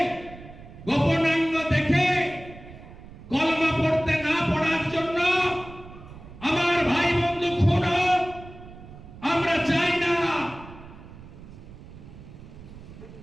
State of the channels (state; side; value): noise; right; rumble, 17 dB below the sound